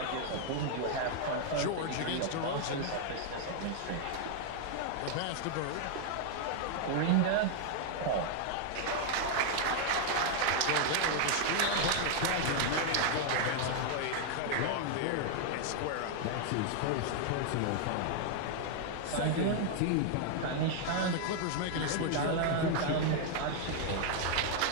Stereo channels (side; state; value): both; different; correlation 0.00